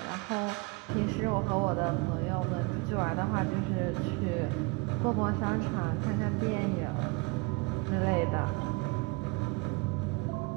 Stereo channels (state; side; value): quieter; left; 27.4 dB